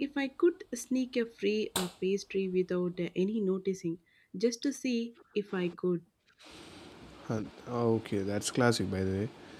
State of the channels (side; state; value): both; identical; correlation 1.00